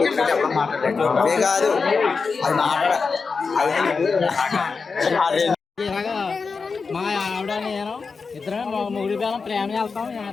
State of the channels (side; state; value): right; quieter; 4.8 dB